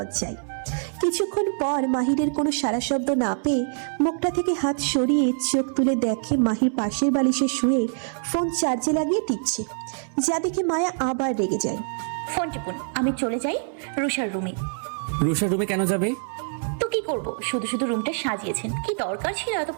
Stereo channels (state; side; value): silent; left; 62 dB below the other